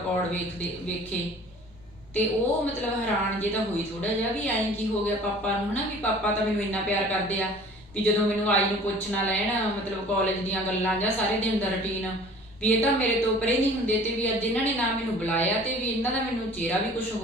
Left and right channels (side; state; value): both; normal; correlation 0.47